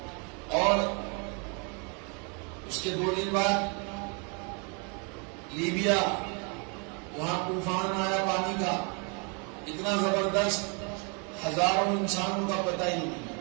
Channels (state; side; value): quieter; left; 35.2 dB